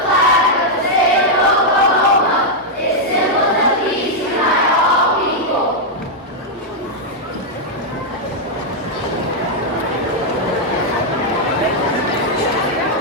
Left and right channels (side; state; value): both; normal; correlation -0.03